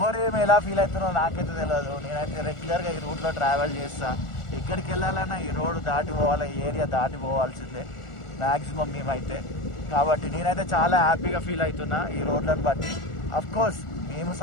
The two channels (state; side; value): late; right; 1.4 ms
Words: ఎలా ఫీల్ అవుతున్నారో నాకైతే తెలియదు. నేనైతే రెగ్యులర్గా ఈ రూట్లో ట్రావెల్ చేస్తా. ఎక్కడికి వెళ్ళాలన్నా ఈ రోడ్డు దాటి పోవాలి, ఈ ఏరియా దాటి పోవాల్సిందే మ్యాక్సిమం మేమైతే. కాబట్టి నేనైతే చాలా హ్యాపీగా ఫీల్ అవుతున్నా ఈ రోడ్లను బట్టి. అఫ్కోర్స్ మేము